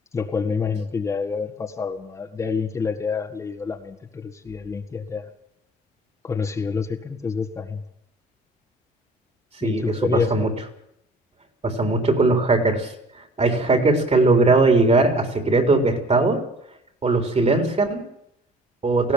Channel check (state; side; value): normal; both; correlation 0.51